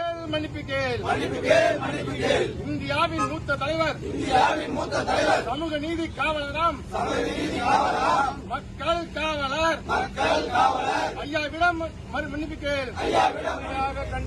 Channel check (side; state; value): both; identical; correlation 1.00